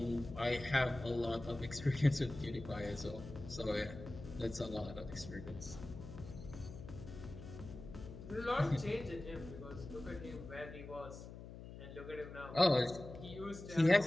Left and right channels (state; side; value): noise; left; hum, 12 dB below the sound